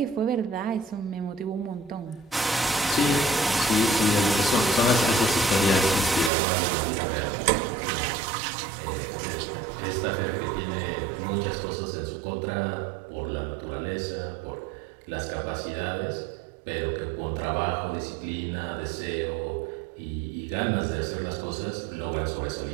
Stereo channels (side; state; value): left; drops out; at 6.3 s